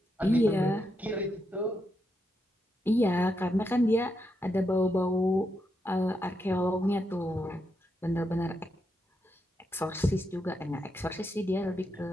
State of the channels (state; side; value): normal; both; correlation 0.83